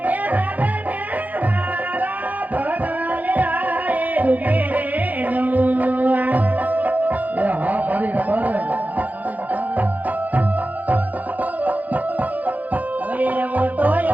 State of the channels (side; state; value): left; late; 0.079 ms